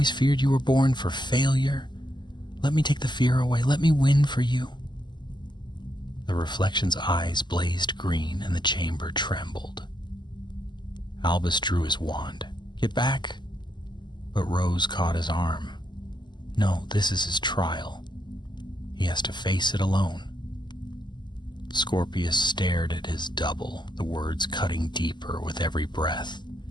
feared you were born for failure. Let me take the fear away. Let me win for you." The reflection's eyes blazed green and the chamber trembled. Albus drew his wand. "Get back." But Rose caught his arm. "No, this is his trial. He has to face it alone." Scorpius stared at his double, the words cutting deeper with every breath.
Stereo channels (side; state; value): right; late; 0.21 ms